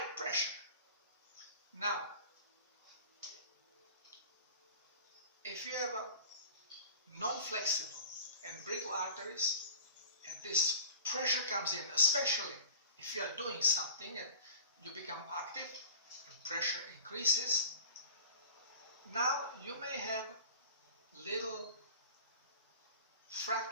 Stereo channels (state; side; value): inverted; both; correlation -0.41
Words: pressure. Now, if you have a non-flexible and brittle arteries, and this pressure comes in, especially if you are doing something and you become active and pressure increases, now you may have little